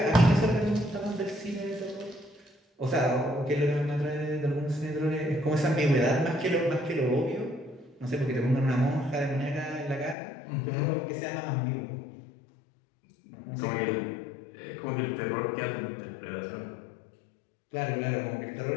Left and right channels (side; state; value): right; drops out; at 10.2 s